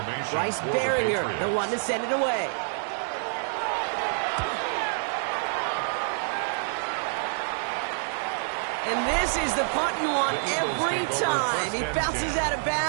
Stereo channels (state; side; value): silent; left; digital silence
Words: Bryce Barringer, the one to send it away. And this is the punt you want every time. He bounces out of